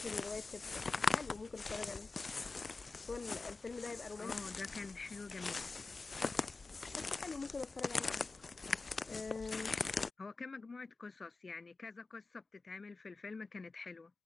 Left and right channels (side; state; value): right; quieter; 3.8 dB